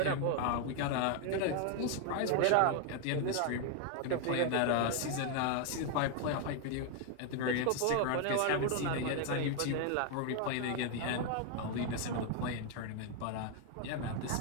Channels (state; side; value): different; both; correlation 0.01